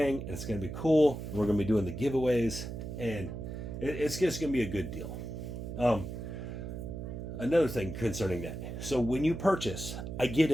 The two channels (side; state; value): right; noise; hum, 7 dB below the sound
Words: and it's going to be cool. We're going to be doing the giveaways, and it's just going to be a good deal. Another thing concerning that. So when you purchase, I get